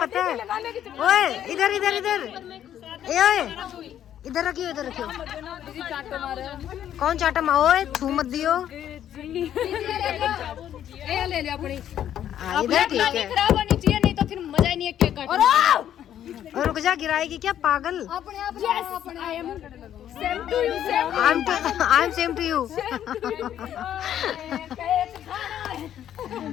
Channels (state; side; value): quieter; right; 10.6 dB